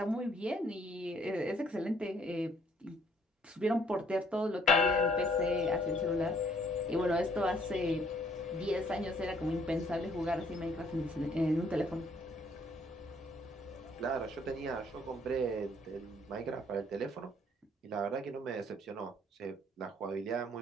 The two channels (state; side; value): normal; both; correlation 0.63